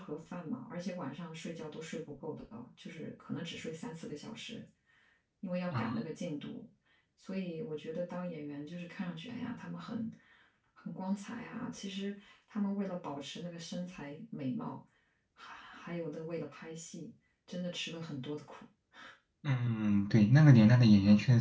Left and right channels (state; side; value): identical; both; correlation 1.00